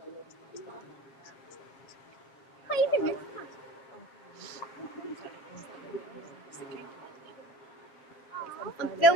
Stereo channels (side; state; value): right; late; 7.4 ms